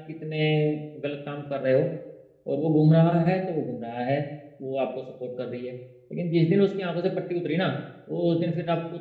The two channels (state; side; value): identical; both; correlation 1.00